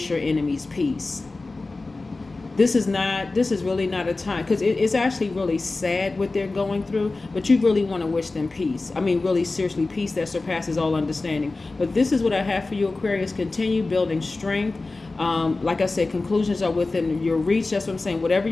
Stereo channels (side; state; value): right; quieter; 3.4 dB